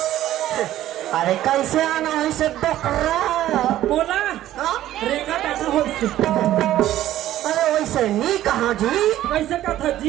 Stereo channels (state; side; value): quieter; left; 13.5 dB